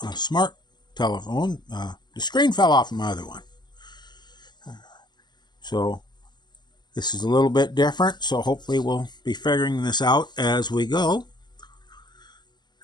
smart telephone. The screen fell off my other one. So this is a little bit different, so hopefully we'll be figuring this out as we go.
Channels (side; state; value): right; late; 0.21 ms